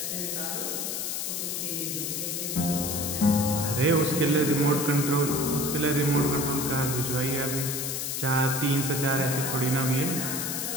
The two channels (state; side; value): noise; left; hiss, 2 dB below the sound